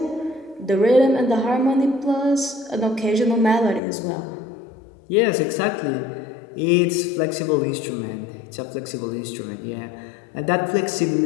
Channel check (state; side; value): drops out; right; at 3.8 s